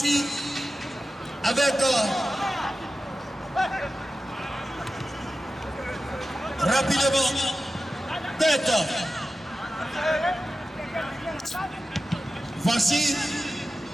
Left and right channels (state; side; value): normal; both; correlation 0.94